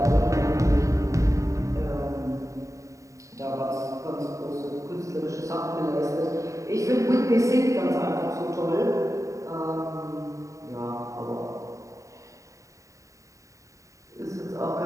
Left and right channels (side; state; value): left; late; 0.16 ms